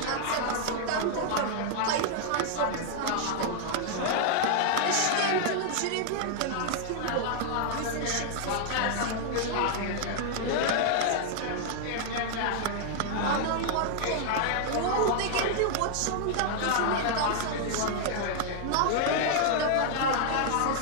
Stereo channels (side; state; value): both; different; correlation -0.01